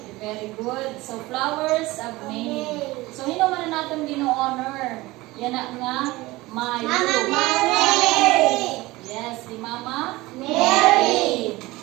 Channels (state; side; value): quieter; left; 20.0 dB